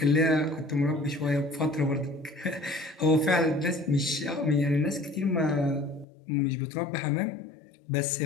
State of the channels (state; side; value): drops out; right; at 6.1 s